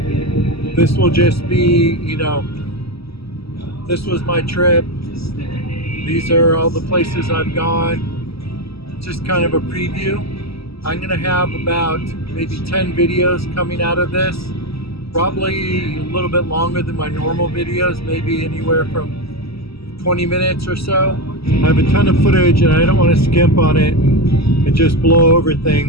This will just be, you know, this was my trip. These are all the places I've gone. Just kind of a preview. I'm going to have about maybe 10 videos coming out of this. Probably a little bit longer than my normal videos, maybe anywhere from 20 minutes or so. I have a ton of footage and I don't want to skimp on it and just blow over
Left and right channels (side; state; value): right; late; 0.76 ms